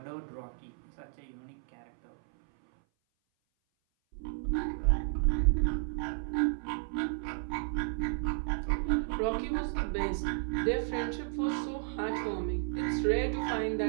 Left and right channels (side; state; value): left; silent; 56 dB below the other